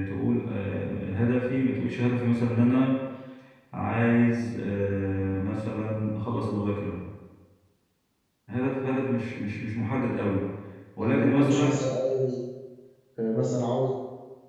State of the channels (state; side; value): identical; both; correlation 1.00